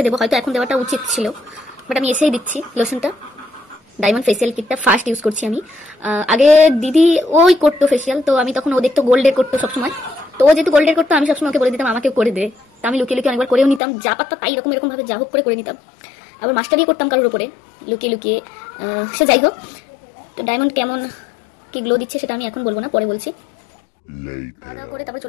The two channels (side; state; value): right; drops out; at 13.8 s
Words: দেবো। হয়তো এখন দেওয়াটা উচিত ছিল, বাট আমি এসেই দিচ্ছি লোশনটা। ডায়মন্ড ফেসিয়াল কিটটা ফার্স্ট ইউজ করছি আমি। আগে দিদি ওই করতো ফেসিয়াল, তো আমি তখন ও দেখতো গোল্ডের করতো সবসময়। তো ও যেহেতু গোল্ডের করতো, আমি সবসময় ওকে বলে দিতাম আমাকেও করে দে। তো আমি লুকিয়ে লুকিয়ে অনেকবার করেও নিতাম, যা পারতাম তাই এরকম ভাবে যা হোক করে নিতাম। আবার মাস্টার দিয়ে করতাম কারোর উপরে লুকিয়ে লুকিয়ে। সে যাই হোক, তো ডায়মন্ড কেমন কি গ্লো দিচ্ছে সেটা আমি এখন বলবো না, পরে বলছি। করে তারপর